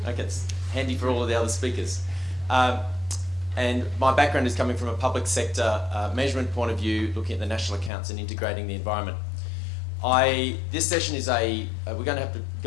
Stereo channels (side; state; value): right; drops out; at 7.9 s